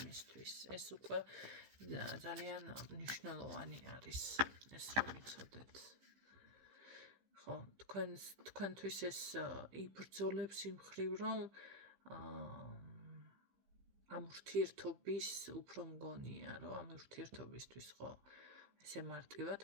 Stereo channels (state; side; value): late; left; 15 ms